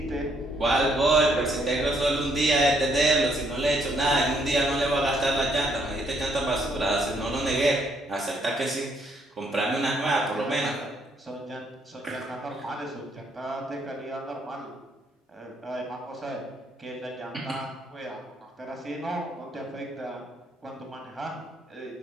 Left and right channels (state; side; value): normal; both; correlation 0.70